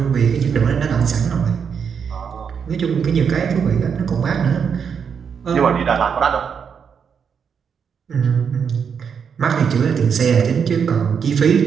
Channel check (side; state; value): left; quieter; 6.8 dB